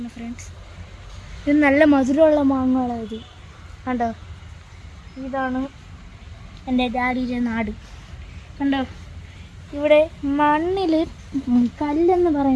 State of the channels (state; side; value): identical; both; correlation 1.00